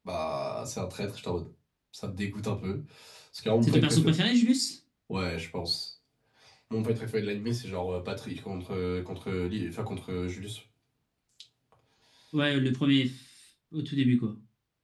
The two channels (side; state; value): both; identical; correlation 1.00